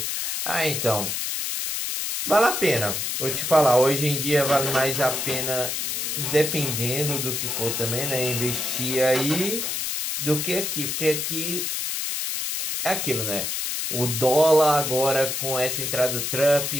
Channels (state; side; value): noise; left; hiss, 2 dB below the sound